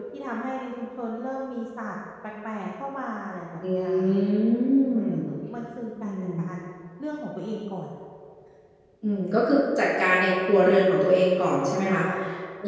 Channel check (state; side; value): identical; both; correlation 1.00